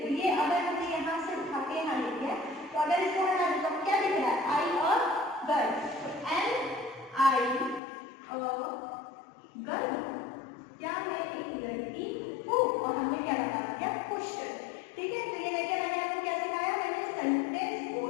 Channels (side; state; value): right; drops out; at 7.8 s